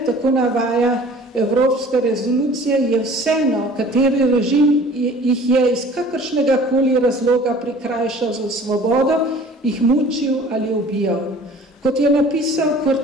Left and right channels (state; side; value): normal; both; correlation 0.48